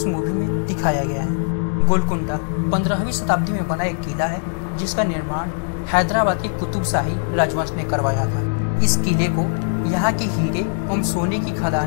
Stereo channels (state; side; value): silent; right; digital silence